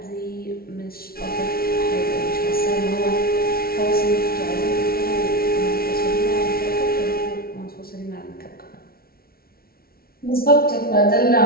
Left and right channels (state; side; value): late; right; 0.44 ms